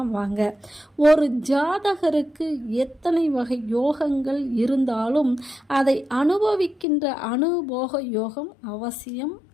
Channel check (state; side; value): drops out; right; at 6.9 s